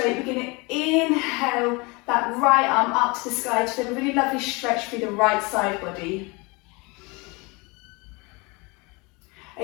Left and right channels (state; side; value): quieter; right; 27.0 dB